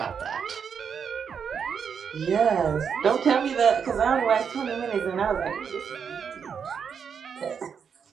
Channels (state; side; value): quieter; left; 6.9 dB